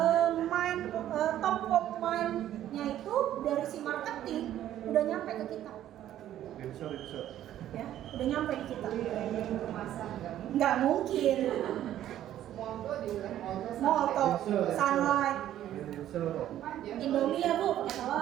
Top of mind-nya itu dari si marketing udah nyampe ke kita. Ya, udah nyampe di kita. Nggak mungkin. Molto, Sunlight, Indomie ya Bu,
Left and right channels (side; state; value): left; quieter; 12.1 dB